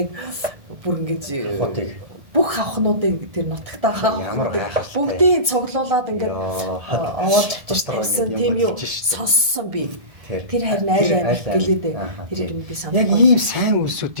бүр ингээд бүх хавхнуудыг тэр нутагтаа ямар гайхалтай бүгдийг цуглуулад ингээд овоод тавьчихсан тийм юу сонссон би. Тэр харин айл гэлээд тэр би санаа. Яг ийм сайн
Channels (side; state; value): left; late; 1.6 ms